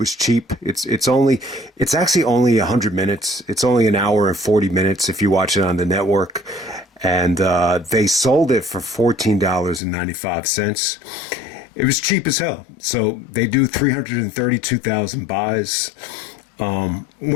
cheap. It's actually only 100 minutes. It's only an hour and 40 minutes if you watch it on the network. And they sold it for $14.95. It was cheap as hell. So they do 332,000 buys.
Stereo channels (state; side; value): drops out; right; at 9.8 s